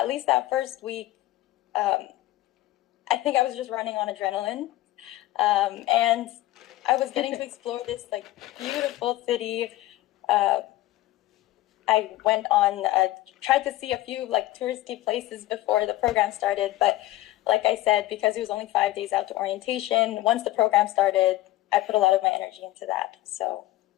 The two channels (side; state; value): right; quieter; 16.3 dB